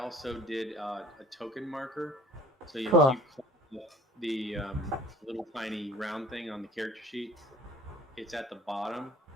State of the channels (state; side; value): normal; both; correlation 0.48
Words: did a token marker. So Cool. if you click the little tiny round thing on the character sheet, it's at the bottom.